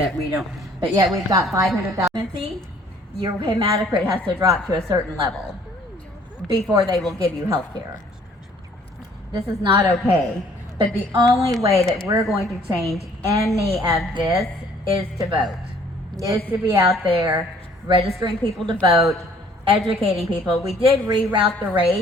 we don't, but yet we've got 500,000. Your hematocrit has to drop to a certain level before they will give you health care. This is not okay. But the only way that we're going to change any of this is to vote. Is to be out there registering people to vote, educating people. We did reroute the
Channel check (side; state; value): both; normal; correlation 0.58